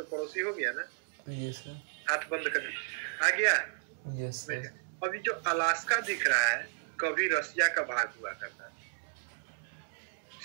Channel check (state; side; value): silent; left; digital silence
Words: पड़ोसी हो गया ना। Yes sir. हाथ बंद कर आ गया। Yes sir. अभी जो अलास्का दिख रहा है कभी रसिया का भाग हुआ करता,